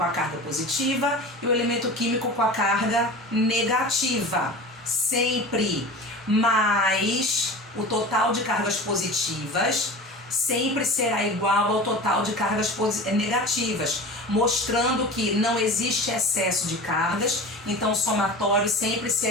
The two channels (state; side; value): normal; both; correlation 0.35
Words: a carga positiva e o elemento químico com a carga negativa, sempre. Mas o total de cargas positivas sempre será igual ao total de cargas negativas, mostrando que não existe excesso de cargas, então o somatório sempre